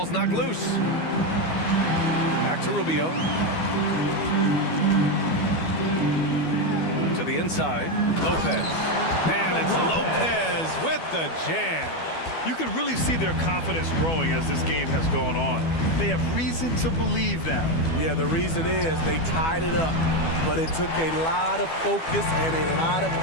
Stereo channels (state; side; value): late; right; 12 ms